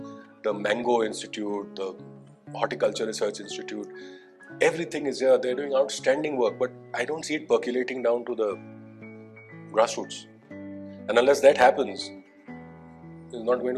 the Mango Institute, the Horticulture Research Institute. Everything is here. They're doing outstanding work, but I don't see it percolating down to the grassroots. And unless that happens, it's not going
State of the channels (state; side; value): identical; both; correlation 1.00